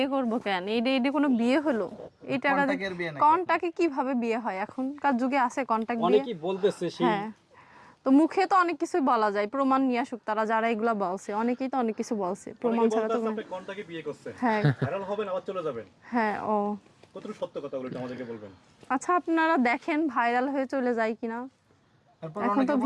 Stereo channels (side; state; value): both; identical; correlation 1.00